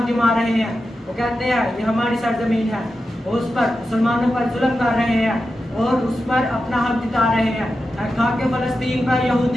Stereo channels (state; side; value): normal; both; correlation 0.90